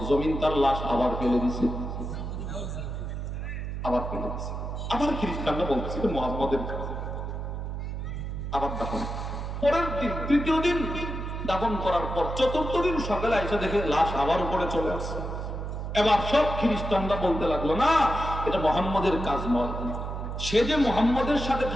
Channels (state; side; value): noise; right; hum, 5 dB below the sound